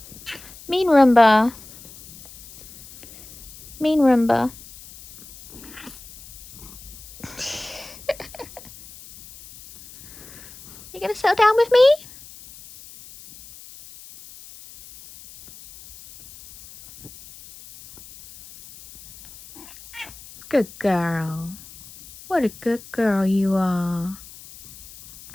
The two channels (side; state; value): left; noise; hiss, 19 dB below the sound